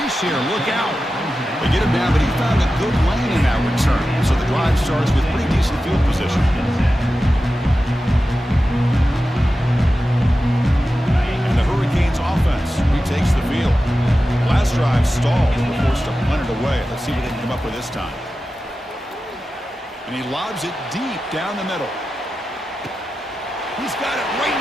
here. Look out. They get him down, but he found a good lane in that return. So the drive starts with pretty decent field position. And the Hurricanes offense retakes the field. Last drive stalled. They were forced to punt it away. Let's see what they can come up with this time. And he lobs it deep down the middle. He's got it right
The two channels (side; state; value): both; normal; correlation 0.93